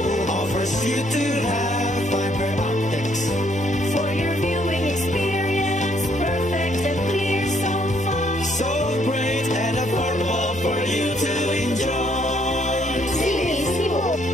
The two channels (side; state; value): both; normal; correlation 0.68